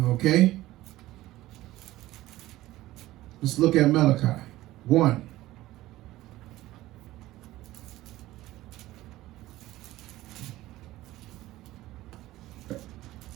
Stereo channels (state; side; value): quieter; left; 16.4 dB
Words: Okay? Let's look at Malachi. 1.